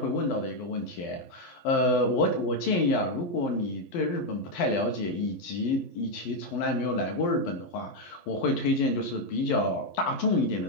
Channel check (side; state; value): right; late; 11 ms